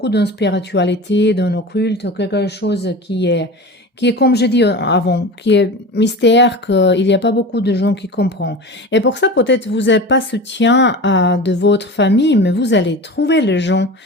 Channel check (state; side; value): normal; both; correlation 0.31